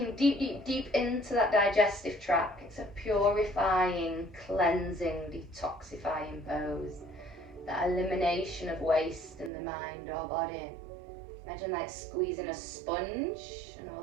deep, deep, deep into that digestive tract. It's a purifying, cleansing, detoxifying pose. That elimination of waste in the mind or body. Imagine like squeezing a sponge and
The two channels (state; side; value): drops out; left; at 9.5 s